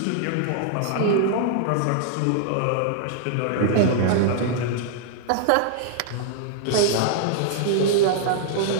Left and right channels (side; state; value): both; different; correlation -0.01